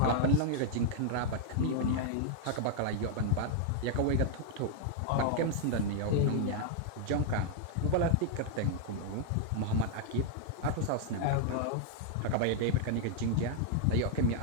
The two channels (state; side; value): different; both; correlation -0.01